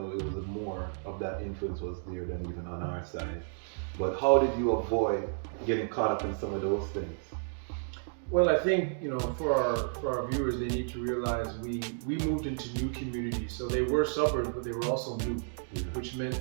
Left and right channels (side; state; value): left; silent; digital silence